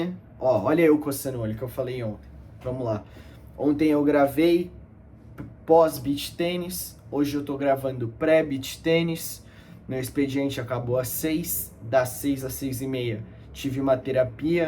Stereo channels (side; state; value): both; identical; correlation 1.00